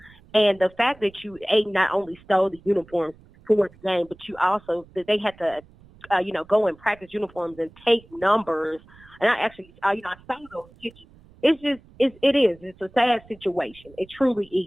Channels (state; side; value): noise; right; rumble, 25 dB below the sound